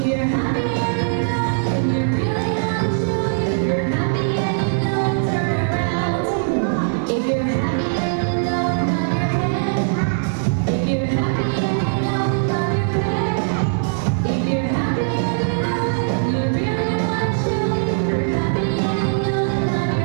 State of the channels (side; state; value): left; silent; 59 dB below the other